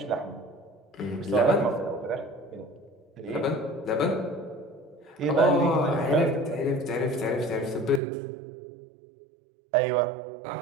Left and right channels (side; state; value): left; drops out; at 8.0 s